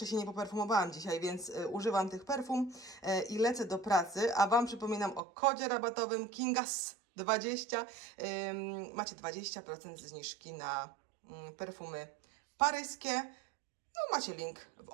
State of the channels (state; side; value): drops out; left; at 5.2 s